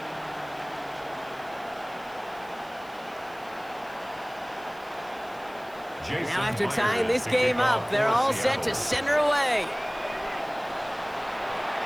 Now after tying this game up, they're all set to send her away.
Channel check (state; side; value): noise; right; hiss, 26 dB below the sound